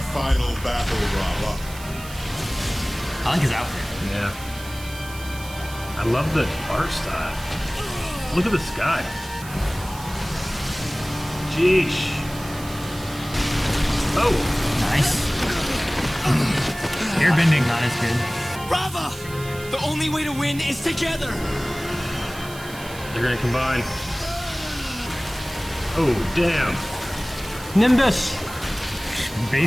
final battle, Rava? I like his outfit. Yeah. I love the art style. Look at the sky. Jeesh. Oh! Nice. Airbending. Not as good. Rava! The only way to win is together! They're gonna combine. Oh, damn. Nimbus.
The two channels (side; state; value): right; noise; hiss, 15 dB below the sound